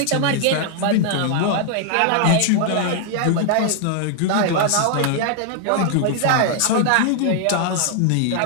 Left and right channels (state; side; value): different; both; correlation 0.00